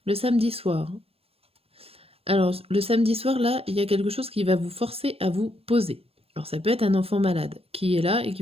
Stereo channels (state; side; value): late; left; 0.28 ms